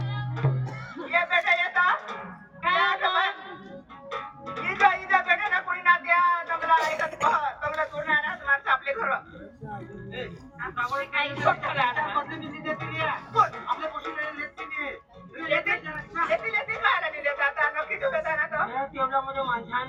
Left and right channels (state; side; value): identical; both; correlation 1.00